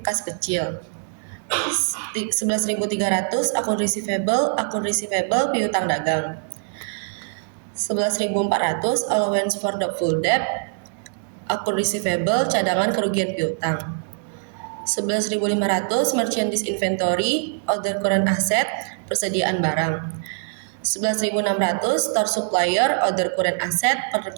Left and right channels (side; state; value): left; silent; 63 dB below the other